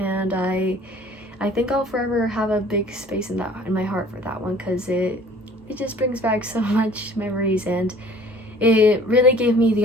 I think I'll forever have a big space in my heart for that one, because it just brings back so much memories, and it really gave me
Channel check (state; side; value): normal; both; correlation 0.51